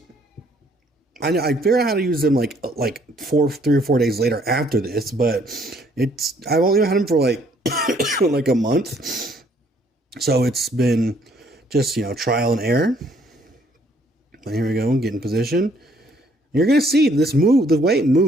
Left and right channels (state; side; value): normal; both; correlation 0.64